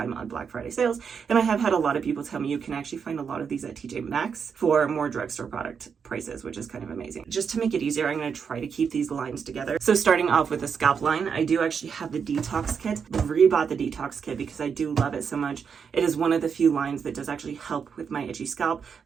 on Black Friday sales. And I have had a lot of people tell me you can actually find a lot of these at TJ Maxx for more drugstore product prices, which is kind of amazing. Just to make it easier, I'm going to try to keep these lines together. So starting off with the scalp line, I do actually have the detox kit. I rebought the detox kit because I do love it so much. It is one of the few lines that does actually help with my itchy scalp.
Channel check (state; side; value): quieter; left; 6.5 dB